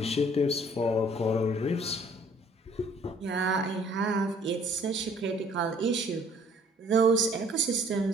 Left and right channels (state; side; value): normal; both; correlation 0.58